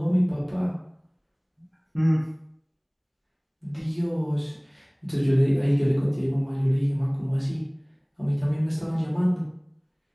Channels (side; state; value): both; identical; correlation 1.00